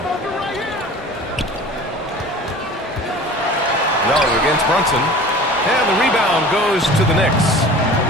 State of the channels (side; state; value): both; normal; correlation 0.41